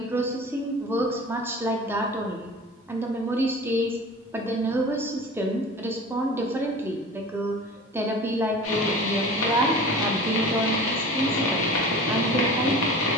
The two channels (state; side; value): normal; both; correlation 0.38